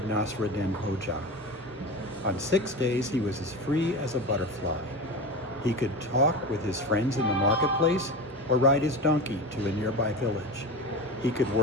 Nasrudin Hoja. On 6 days, he was as free as a butterfly. He could talk with his friends in the marketplace or ride his donkey to a nearby village. He could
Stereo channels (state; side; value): normal; both; correlation 0.27